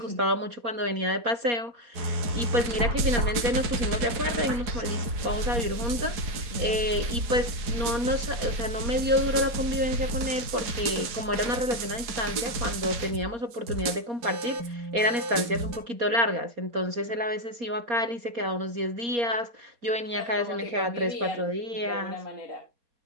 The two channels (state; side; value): late; left; 4.7 ms